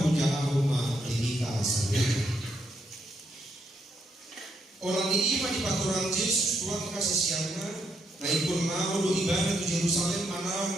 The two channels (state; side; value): normal; both; correlation 0.77